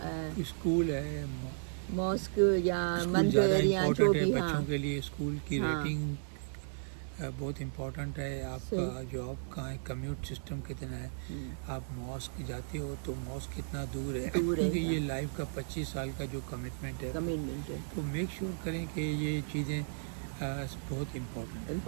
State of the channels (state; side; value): silent; left; digital silence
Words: स्कूल है, मॉस्क या मंदिर या जो भी। बच्चों के लिए स्कूल की रेटिंग बहुत इम्पोर्टेंट है, आपका जॉब कहाँ है, कम्यूट सिस्टम कितना है, आप मॉस्क जाते हो तो मॉस्क कितना दूर है, क्योंकि ये लाइफ का 25 साल का जो कमिटमेंट है, तो मेक श्योर करें कि ये चीज़ें बहुत इम्पोर्टेंट।